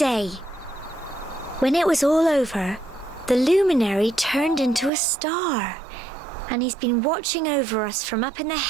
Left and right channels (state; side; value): drops out; left; at 4.9 s